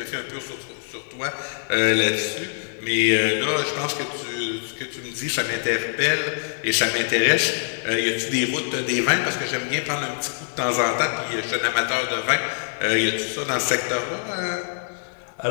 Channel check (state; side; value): silent; right; digital silence